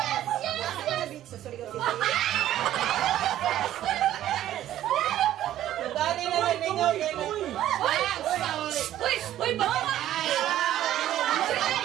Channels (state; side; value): quieter; left; 12.7 dB